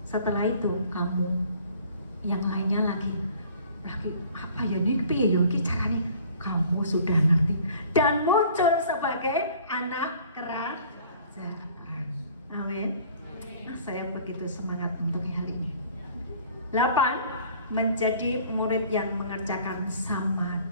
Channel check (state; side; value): inverted; both; correlation -0.51